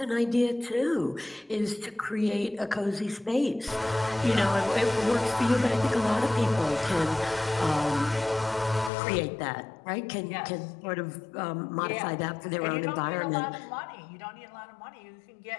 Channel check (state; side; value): drops out; right; at 8.9 s